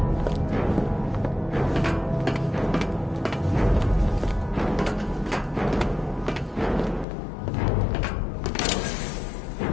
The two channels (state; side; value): drops out; right; at 7.1 s